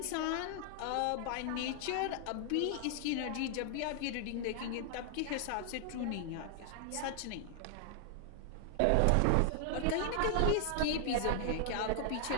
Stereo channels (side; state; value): both; different; correlation 0.00